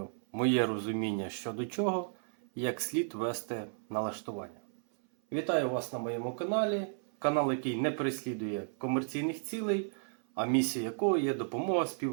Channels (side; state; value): left; silent; 56 dB below the other